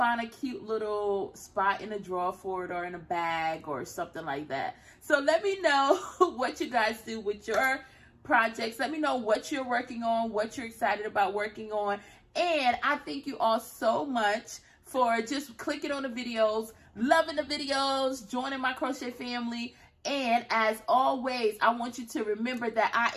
a cute little spot in a drawer for it, or in a bag or something like that. So let me know what you guys do with your projects. Let me know what you're working on, what you're excited about working on. And I thank you all so much for just clicking on the videos, loving the videos, joining my crochet family. And as always, I want you to remember that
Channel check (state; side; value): identical; both; correlation 1.00